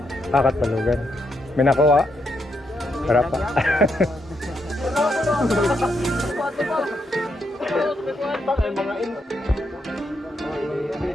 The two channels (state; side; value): normal; both; correlation 0.79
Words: Katbalogan. May nakuha. Para pa.